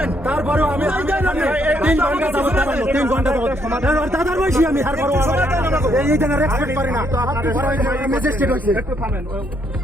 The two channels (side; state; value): both; normal; correlation 0.72